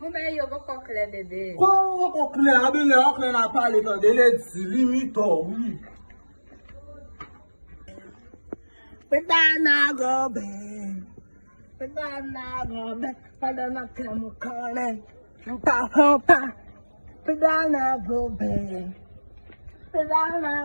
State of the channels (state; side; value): inverted; both; correlation -1.00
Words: Mais il y a encore clair, bébé. Quoi, on clair, on a parlé quand il est limite, oui. Pedana go bang. Pedana go bang. Pedana come calling. Pedana go bang.